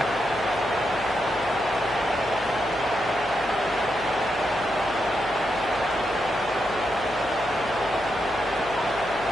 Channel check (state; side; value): noise; left; hum, 18 dB below the sound